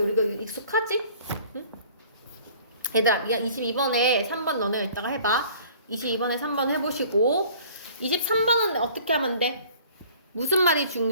우리가 익숙하지? 응? 얘들아, 22번에 3번 너네 이따가 해봐. 22번에 3번 해보시고 23번은 어떻게 하면 돼? 무슨 말이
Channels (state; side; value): inverted; both; correlation -0.51